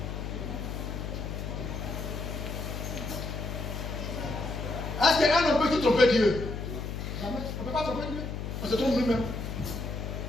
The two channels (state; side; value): noise; left; hum, 5 dB below the sound